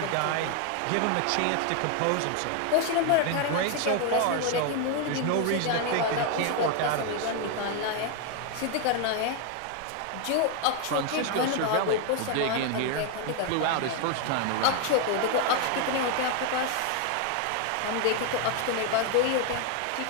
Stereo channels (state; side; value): different; both; correlation 0.01